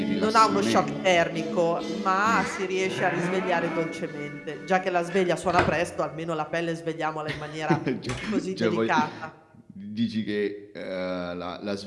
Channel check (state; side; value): identical; both; correlation 1.00